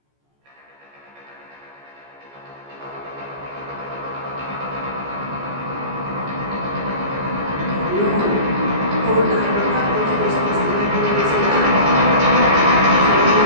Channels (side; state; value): left; late; 14 ms